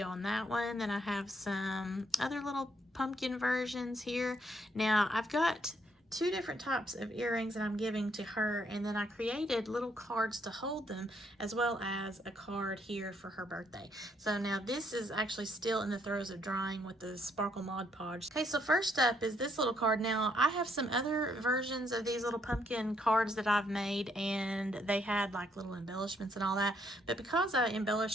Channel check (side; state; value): both; normal; correlation 0.71